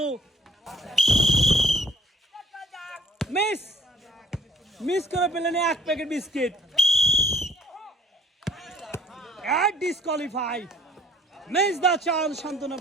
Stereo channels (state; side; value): normal; both; correlation 0.57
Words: মিস করে পেলেন এক packet biscuit. Disqualify. Miss the chance, সান্ত্বনা